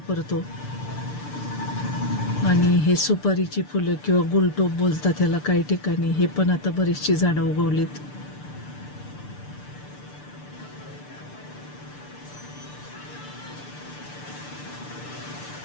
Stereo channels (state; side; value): late; right; 6.8 ms